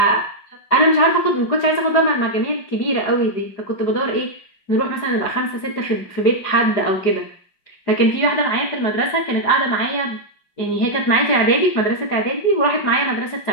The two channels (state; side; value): late; right; 4.9 ms